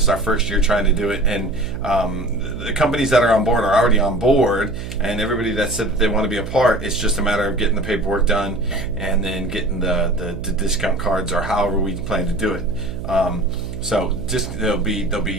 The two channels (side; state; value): right; noise; hum, 9 dB below the sound